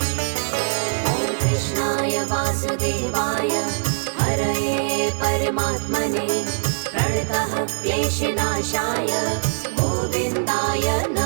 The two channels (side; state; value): left; silent; digital silence